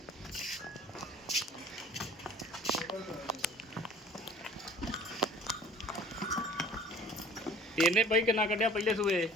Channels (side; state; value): both; normal; correlation 0.48